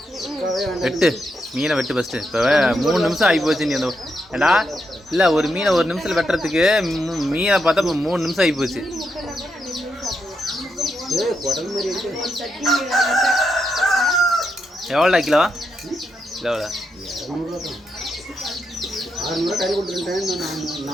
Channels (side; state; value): both; normal; correlation 0.82